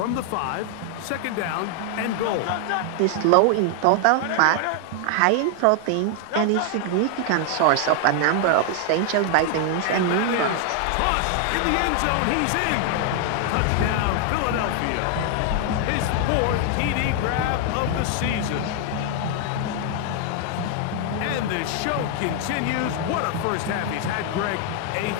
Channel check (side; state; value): both; different; correlation 0.00